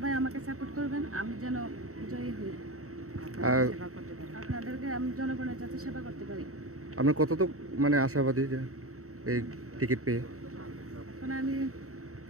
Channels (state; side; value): late; left; 0.64 ms